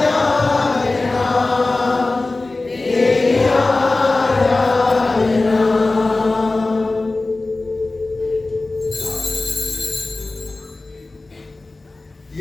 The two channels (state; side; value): quieter; right; 3.2 dB